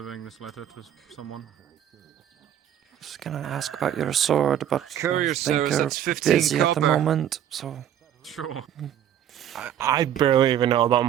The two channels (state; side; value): quieter; left; 10.4 dB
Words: this letter to someone. I was gonna ask about your sword, but Courier I think service, you're that's 15 busy at the copper. moment, so... Sure. I barely even know about